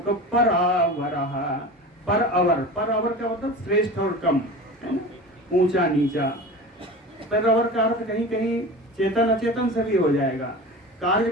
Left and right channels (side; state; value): both; normal; correlation 0.33